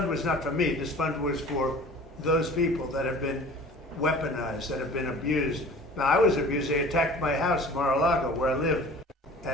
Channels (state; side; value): normal; both; correlation 0.44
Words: was not for me. This fund was for those people that have been weaponized, that have been abused. Now, I was abused. They attacked my house, Mar-a-Lago, where I live.